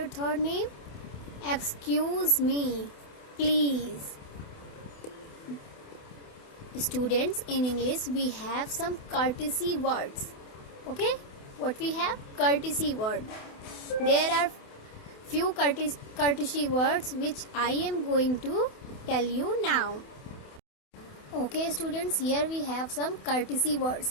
3 name? Excuse me, please. Students, in English we have some courtesy words. Okay, what we have? Courtesy word. There are few courtesy words which I am going to tell you now. Okay students, here we have some courtesy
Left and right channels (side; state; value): right; late; 28 ms